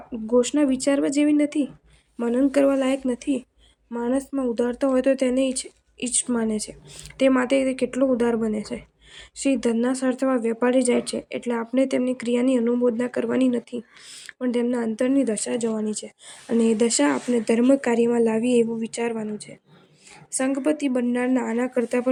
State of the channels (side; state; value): both; identical; correlation 1.00